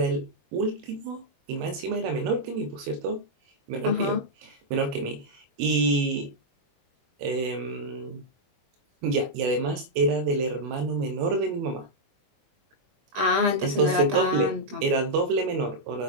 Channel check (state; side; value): late; left; 22 ms